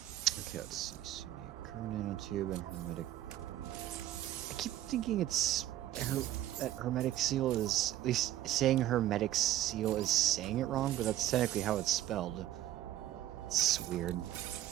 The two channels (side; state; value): left; quieter; 13.2 dB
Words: Okay, let's see. So we need current nanotube and hermetic. I keep thinking it's that hermetic seal is, at least saying hermetic seal is saying it wrong, but that's technically how it's spelled. It's weird.